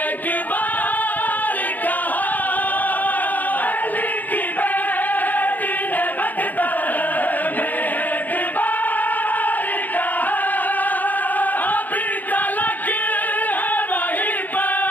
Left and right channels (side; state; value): right; late; 0.083 ms